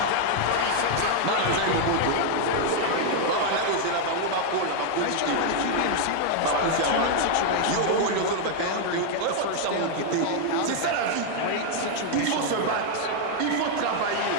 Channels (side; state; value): both; different; correlation 0.00